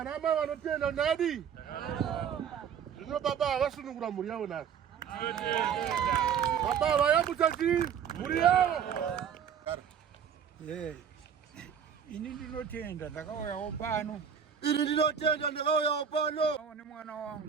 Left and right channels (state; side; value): quieter; left; 7.9 dB